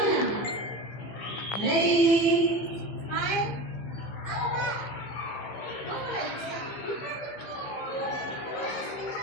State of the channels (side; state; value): right; late; 15 ms